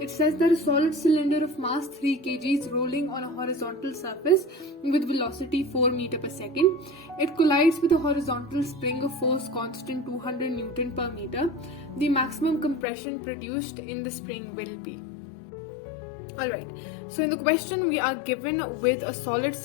says that a solid cylinder of mass 3 kg is rolling on a horizontal surface with velocity 4 meter per second. It collides with a horizontal spring of force constant 200 Newton per meter. The maximum compression produced in the spring will be. Alright, so in the question we are given with a solid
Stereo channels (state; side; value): drops out; right; at 12.9 s